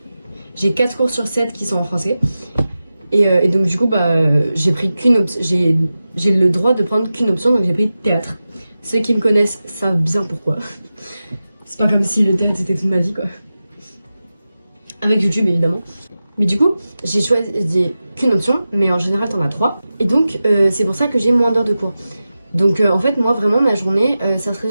cours sur 7 qui sont en français. Et donc du coup j'ai pris qu'une option. J'ai le droit de prendre qu'une option, donc j'ai pris théâtre. Ceux qui me connaissent savent bien pourquoi. C'est pas comme si le théâtre c'était toute ma vie quoi. Avec YouTube évidemment. Mais du coup, j'ai choisi qu'une option, mais en général t'en as 3. Et donc c'est pour ça que j'ai moins d'heures de cours. Donc en fait moi vraiment ma journée, ça se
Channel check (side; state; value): both; inverted; correlation -0.94